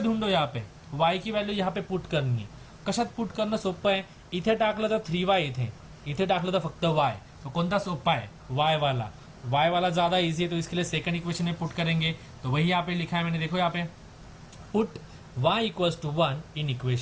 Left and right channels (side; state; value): both; identical; correlation 1.00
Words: ढूंढो यहाँ पे, y की वैल्यू यहाँ पे पुट करनी है। कशात पुट करणं सोपं आहे? इथे टाकलं तर 3y, इथे टाकलं तर फक्त y, तो कोणता सोपा है? y वाला ज्यादा इजी है, तो इसके लिए सेकंड इक्वेशन में पुट करेंगे, तो वही यहाँ पे लिखा है मैंने, देखो यहाँ पे put y equals to 1 in